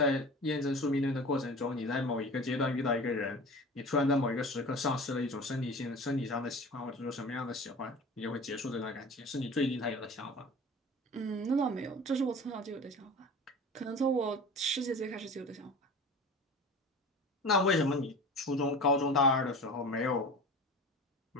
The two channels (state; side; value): normal; both; correlation 0.37